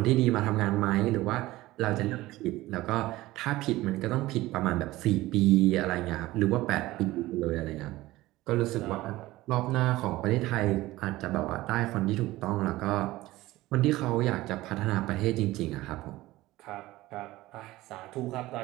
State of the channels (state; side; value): quieter; left; 17.7 dB